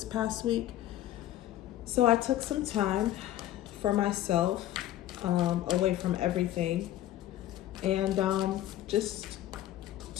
past week. So I took some time for myself, away from everything, and just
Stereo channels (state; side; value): quieter; right; 13.6 dB